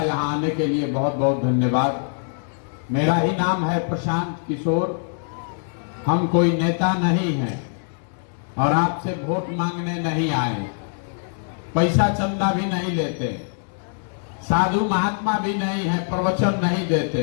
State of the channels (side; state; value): right; silent; digital silence